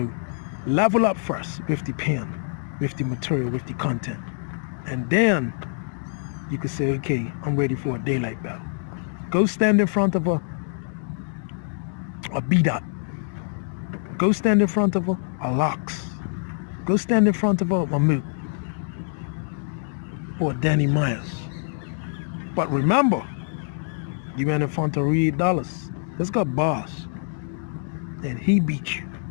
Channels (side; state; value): right; silent; digital silence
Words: level up first with the pen, with the material, with the content. And then you can say, okay, I'm ready for a Daylyt battle. Go stand in front of a B-Dot. Go stand in front of a Locks. Go stand in front of a Mamoot. Or Danny Myers. But remember, you went in front of Reed Dollars. Let's go boss. And he beat you.